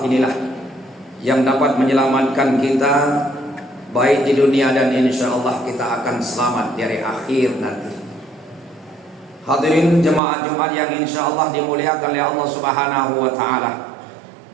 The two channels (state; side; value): drops out; left; at 10.2 s